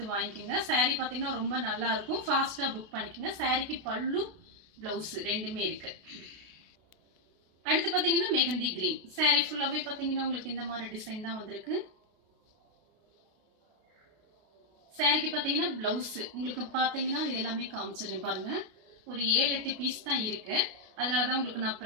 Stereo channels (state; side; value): late; left; 32 ms